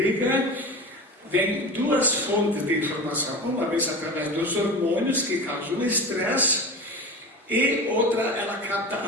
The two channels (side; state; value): both; normal; correlation 0.30